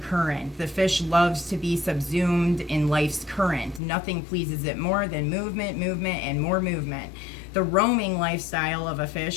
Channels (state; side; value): drops out; right; at 3.8 s